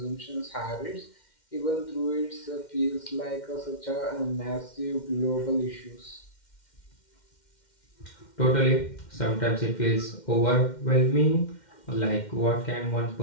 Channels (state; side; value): late; right; 2.1 ms